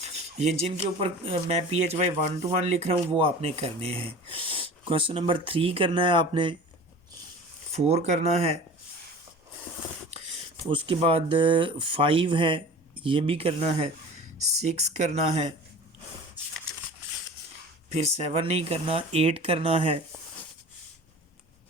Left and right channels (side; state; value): both; normal; correlation 0.39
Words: ये जिनके ऊपर मैं PHY 1 to 1 लिख रहा हूँ वो आपने करने हैं। क्वेश्चन नंबर 3 करना है आपने, 4 करना है, उसके बाद 5 है ये भी करना है, 6 करना है, फिर 7 नहीं करना, 8 करना है,